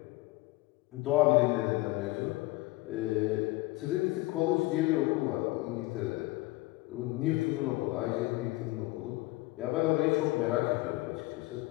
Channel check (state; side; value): quieter; right; 20.4 dB